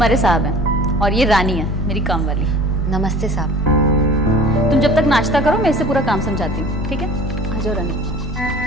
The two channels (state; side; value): normal; both; correlation 0.45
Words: साहब हैं और ये रानी है मेरी काम वाली। नमस्ते साहब। तुम जब तक नाश्ता करो मैं इससे पूरा काम समझाती हूँ, ठीक है? आ जाओ रानी।